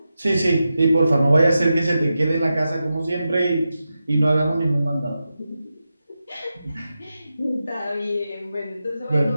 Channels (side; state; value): both; inverted; correlation -0.90